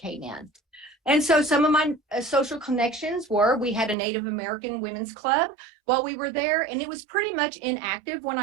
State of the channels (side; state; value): left; drops out; at 4.0 s